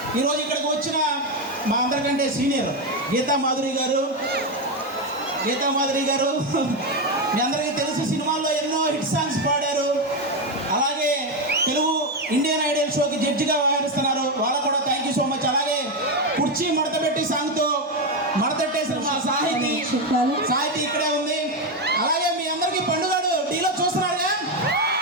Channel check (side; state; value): both; normal; correlation 0.09